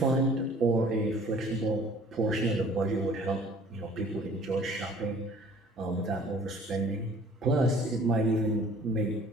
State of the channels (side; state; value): both; normal; correlation 0.52